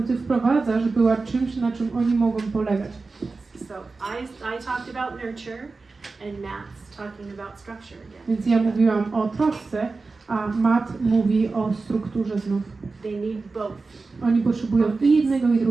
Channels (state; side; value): quieter; left; 4.0 dB